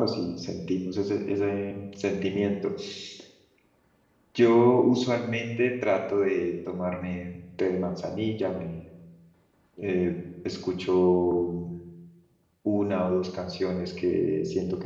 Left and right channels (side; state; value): both; identical; correlation 1.00